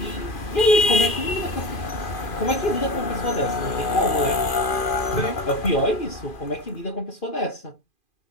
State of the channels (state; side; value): late; right; 2.4 ms